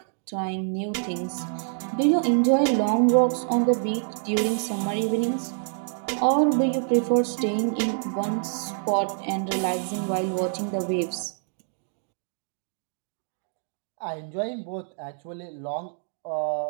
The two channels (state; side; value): silent; left; 59 dB below the other